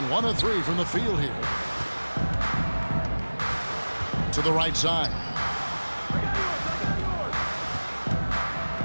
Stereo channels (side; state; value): both; inverted; correlation -1.00